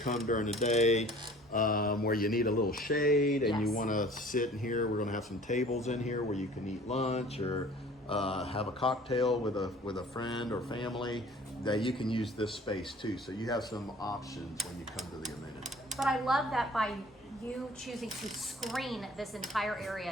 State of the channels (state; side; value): normal; both; correlation 0.49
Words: come during the day where you need a little shade and you want to sit in here, we're going to have some tables in here where you can eat lunch or have a cocktail with a friend or family, that you can use this space too. So you have some options when you come to the amenity. But I love that by you choosing to screen this entire